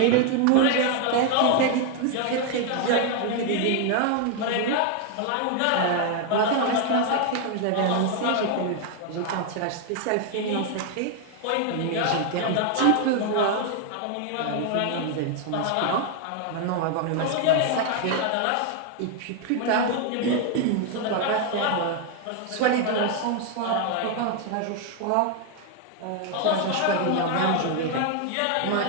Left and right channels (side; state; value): both; different; correlation 0.00